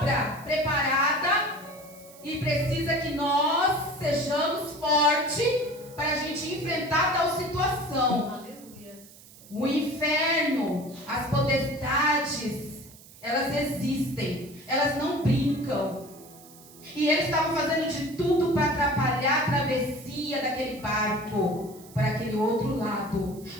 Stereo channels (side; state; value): right; noise; hiss, 21 dB below the sound